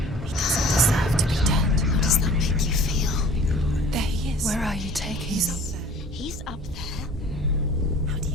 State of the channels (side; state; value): both; normal; correlation 0.48